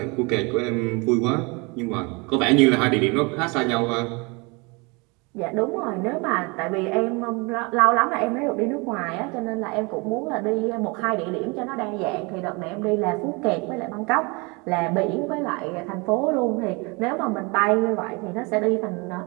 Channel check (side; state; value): left; quieter; 28.6 dB